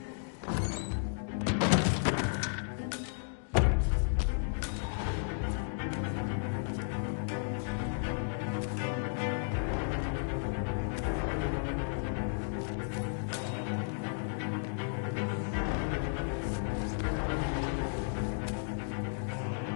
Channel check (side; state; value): right; silent; digital silence